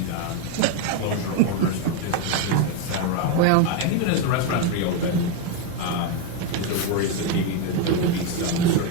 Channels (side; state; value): both; different; correlation 0.02